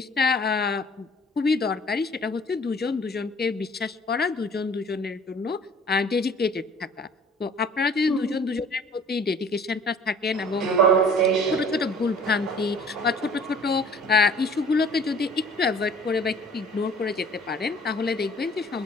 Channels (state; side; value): normal; both; correlation 0.51